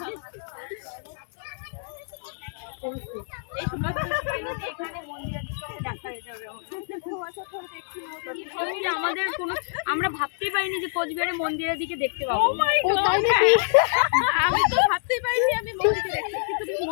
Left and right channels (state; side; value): silent; right; digital silence